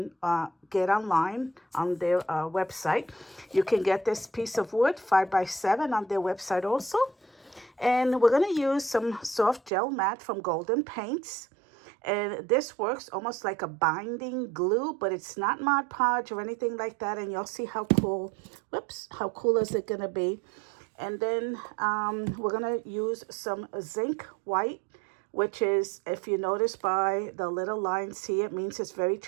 get online on their website. You can get this piece of wood 5x7 on their website also. And we're going to use some soft gel mat from Golden Paints. And this works almost like a binding glue, but it's not Mod Podge or anything like that. And you'll see how cool, how cool is it going to be. And then we're going to use some Zinc white, which is, if you notice by the little lines here, it means it's very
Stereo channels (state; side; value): drops out; left; at 9.7 s